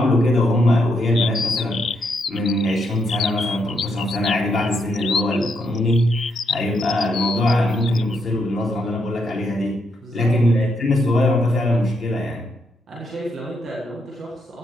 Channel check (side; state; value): both; normal; correlation 0.78